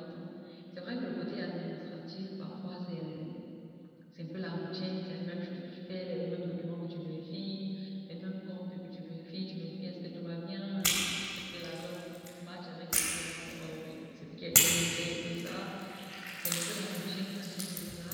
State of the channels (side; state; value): both; identical; correlation 1.00